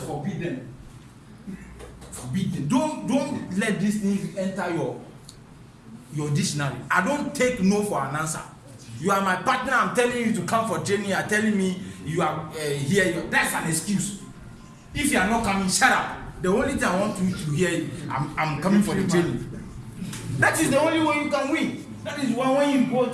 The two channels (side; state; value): both; identical; correlation 1.00